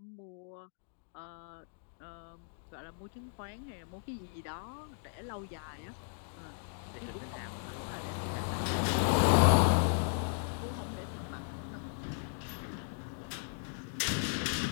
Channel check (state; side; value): silent; right; digital silence